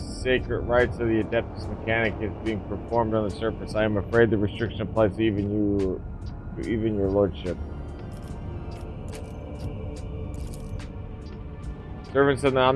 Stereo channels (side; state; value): both; identical; correlation 1.00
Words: sacred rites of the Adeptus Mechanicus being performed on the surface. I am afraid the restriction applies to even your lordship. Servants of the